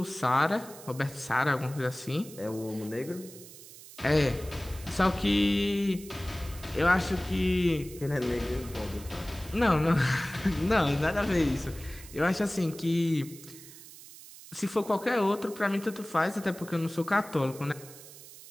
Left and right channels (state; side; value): noise; right; hiss, 17 dB below the sound